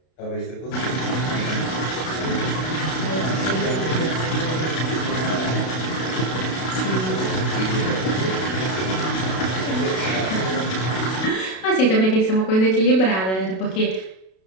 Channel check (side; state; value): right; late; 32 ms